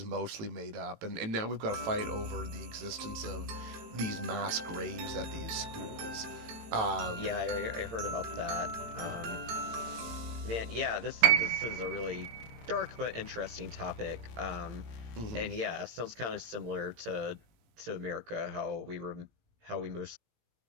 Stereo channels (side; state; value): left; late; 18 ms